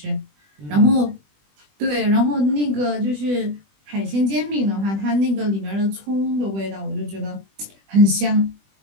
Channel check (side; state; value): left; late; 20 ms